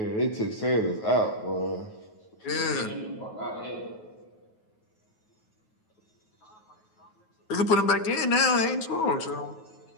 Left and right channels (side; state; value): right; late; 9.3 ms